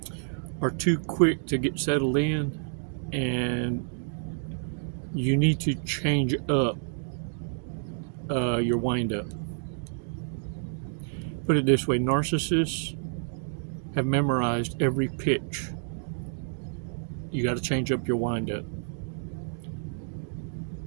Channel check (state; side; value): silent; left; digital silence